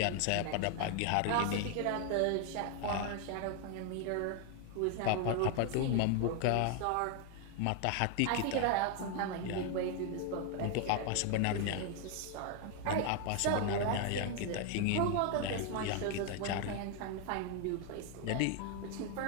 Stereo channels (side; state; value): both; different; correlation 0.00